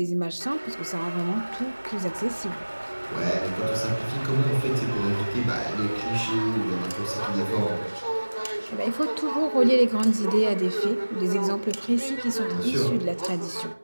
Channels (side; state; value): both; inverted; correlation -1.00